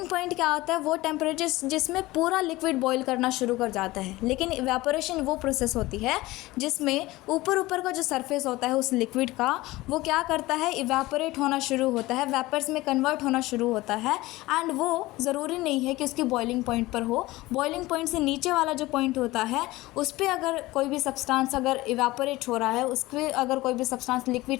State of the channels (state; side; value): quieter; right; 19.2 dB